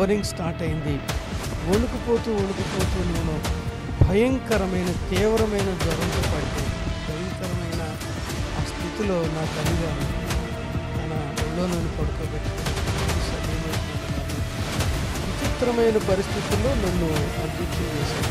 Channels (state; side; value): identical; both; correlation 1.00